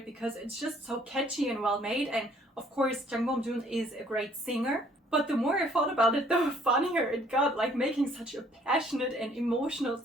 because it's just so catchy and well made, and of course Jang Bom-jun is a great singer. But the more I thought about it, the funnier it got, like making such a passionate and emotional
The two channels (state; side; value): normal; both; correlation 0.60